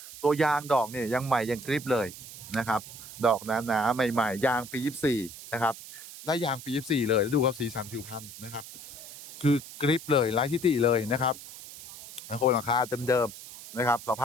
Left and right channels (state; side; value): noise; right; hiss, 14 dB below the sound